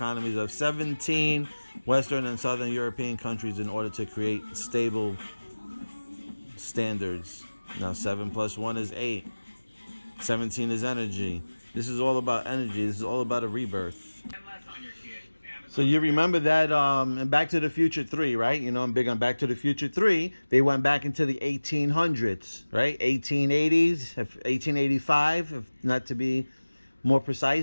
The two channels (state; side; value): inverted; both; correlation -1.00